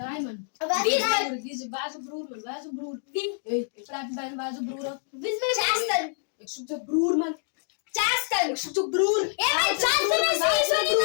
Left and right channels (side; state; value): right; silent; digital silence